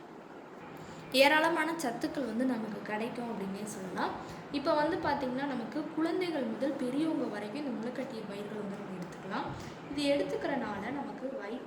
ஏராளமான சத்துக்கள் வந்து நமக்கு கிடைக்கும் அப்படின்னே சொல்லலாம். இப்போ வந்து பார்த்திங்கன்னா, நமக்கு குழந்தைகள் முதல் பெரியவங்க வரைக்கும் இந்த முளைக்கட்டிய பயிர்கள் வந்து நம்ம எடுத்துக்கலாம். இது எடுத்துக்கிறனால நமக்கு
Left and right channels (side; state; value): both; identical; correlation 1.00